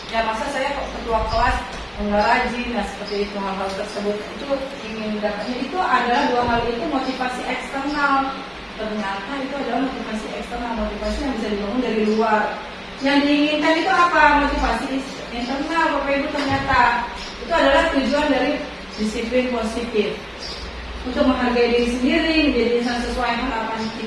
ya masa saya ketua kelas nggak rajin, nah seperti itu, hal-hal tersebut itu ingin dapatnya itu adalah dua hal itu motivasi eksternal. Ternyata itu adalah motivasi eksternal, motivasi yang bisa dibangun dari luar. Yang diinginkan itu apa? Motivasi internal, Bapak Ibu. Ternyata itu adalah tujuan dari disiplin positif, untuk menghargai diri sendiri, menjadi insan sesuai harapan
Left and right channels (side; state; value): both; identical; correlation 1.00